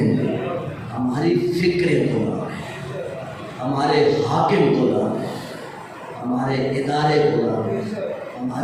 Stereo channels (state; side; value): identical; both; correlation 1.00